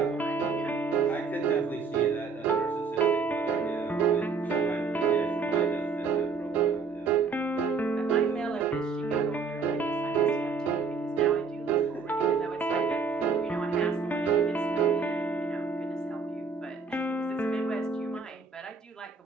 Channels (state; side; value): quieter; left; 4.9 dB